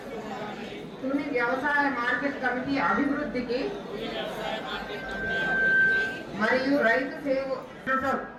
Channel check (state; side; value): identical; both; correlation 1.00